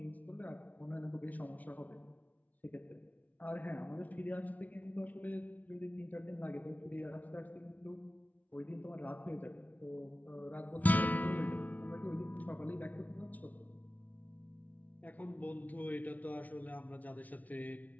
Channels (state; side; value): late; right; 0.073 ms